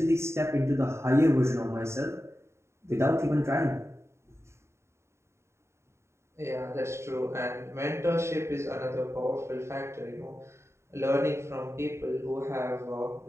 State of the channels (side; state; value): left; late; 0.13 ms